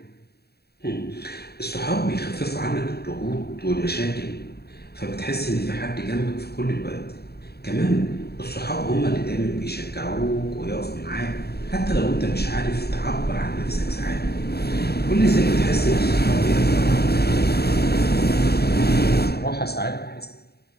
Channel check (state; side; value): late; right; 0.47 ms